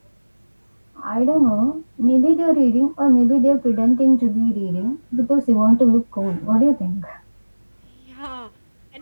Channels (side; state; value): both; inverted; correlation -1.00